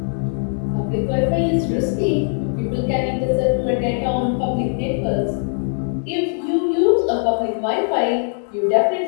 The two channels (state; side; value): silent; right; digital silence